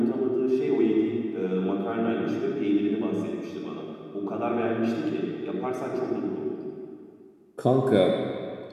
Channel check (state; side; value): identical; both; correlation 1.00